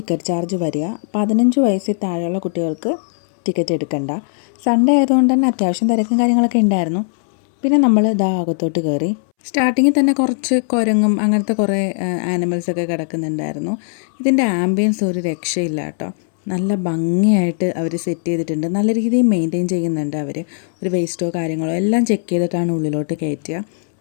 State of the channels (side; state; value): right; silent; 66 dB below the other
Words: ചാർജ് വരിക. 15 വയസ്സിൽ താഴെയുള്ള കുട്ടികൾക്ക് ടിക്കറ്റ് എടുക്കണ്ട. സൺഡേ ആയതുകൊണ്ട് തന്നെ അത്യാവശ്യം തിരക്കും കാര്യങ്ങളൊക്കെ ഉണ്ടായിരുന്നു. പിന്നെ നമ്മൾ ഇതാ അകത്തോട്ട് കയറി. സ്റ്റാർട്ടിങ്ങിൽ തന്നെ കുറച്ച് കുരങ്ങും അങ്ങനത്തെ കുറേ ആനിമൽസൊക്കെ കിടക്കുന്നുണ്ടായിരുന്നു. ഇതിൻ്റെ ആംബിയൻസ് ഒരു രക്ഷയില്ല കേട്ടോ. നല്ല ഭംഗിയായിട്ട് അവർ സെറ്റ് ചെയ്തിട്ടുണ്ട്. നല്ല രീതിയിൽ മെയിൻറ്റെയിൻ ചെയ്യുന്നുണ്ട് അവർ. ഒരു വേസ്റ്റോ കാര്യങ്ങളോ എല്ലാം ചെക്ക് ചെയ്തിട്ടാണ് ഉള്ളിലോട്ട് കയറ്റുക.